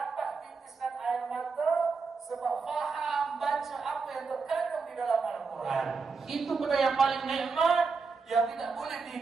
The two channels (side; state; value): left; quieter; 4.7 dB